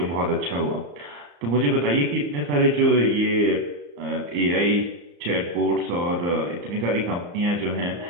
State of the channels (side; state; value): left; late; 34 ms